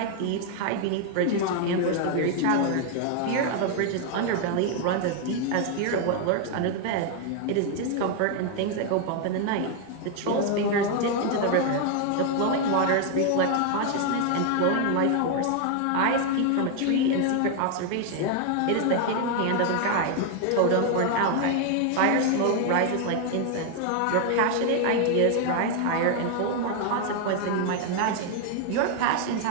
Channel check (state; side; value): different; both; correlation 0.00